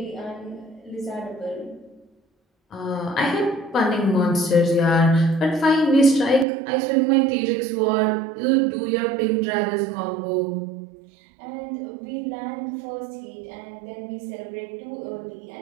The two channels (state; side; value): drops out; left; at 6.5 s